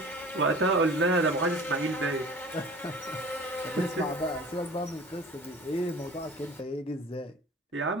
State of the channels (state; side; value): normal; both; correlation 0.42